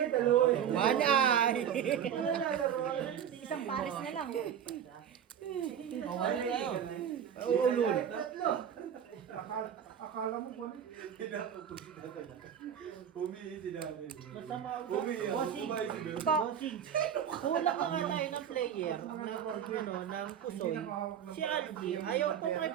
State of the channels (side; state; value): left; quieter; 8.8 dB